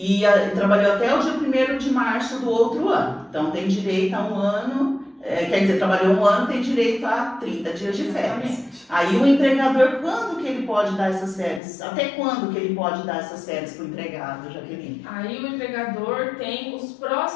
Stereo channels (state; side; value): drops out; right; at 11.6 s